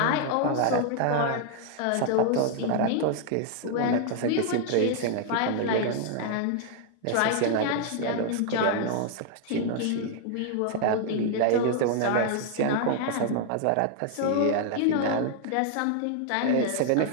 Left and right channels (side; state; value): both; different; correlation 0.00